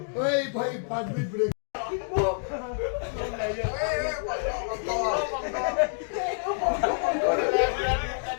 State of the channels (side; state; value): right; silent; digital silence